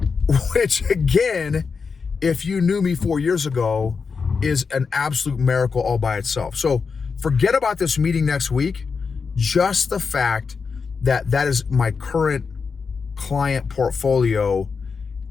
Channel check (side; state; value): right; quieter; 5.3 dB